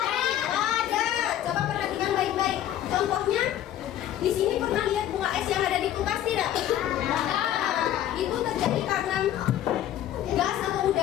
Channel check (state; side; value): quieter; right; 11.8 dB